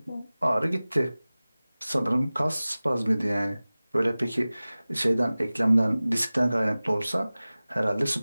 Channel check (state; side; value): inverted; both; correlation -0.98